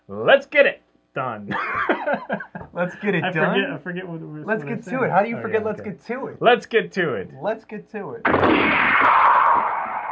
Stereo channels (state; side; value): identical; both; correlation 1.00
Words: Let's get it done. Let's get it I done. forget what we're Let's get to it. How do you forget let's get to it? Let's get to it. Let's get to it.